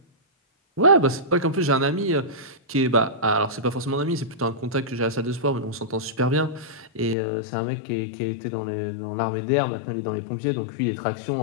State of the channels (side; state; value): right; drops out; at 7.2 s